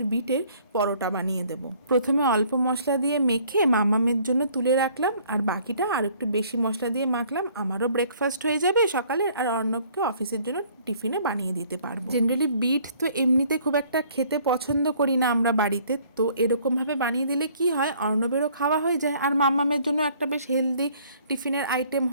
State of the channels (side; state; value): both; inverted; correlation -0.58